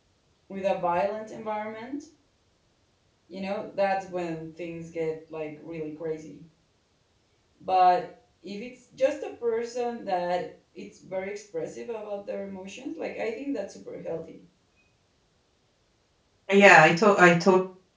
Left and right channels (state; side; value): identical; both; correlation 1.00